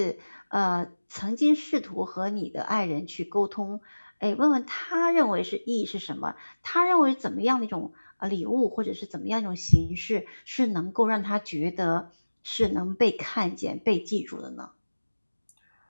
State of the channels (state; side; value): inverted; both; correlation -1.00